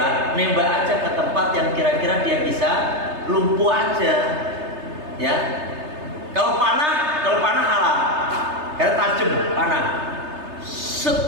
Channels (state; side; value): late; left; 3.3 ms